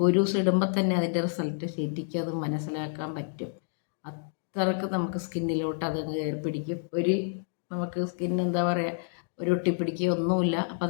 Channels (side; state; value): right; silent; digital silence